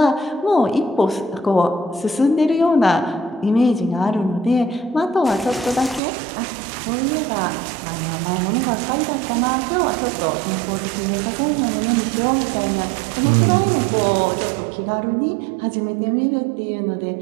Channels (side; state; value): left; drops out; at 6.0 s